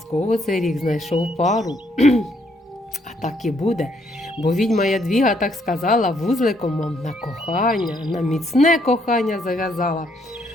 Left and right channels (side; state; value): both; normal; correlation 0.71